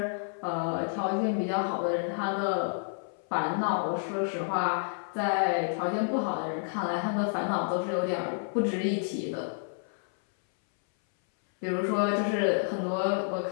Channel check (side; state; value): right; silent; 58 dB below the other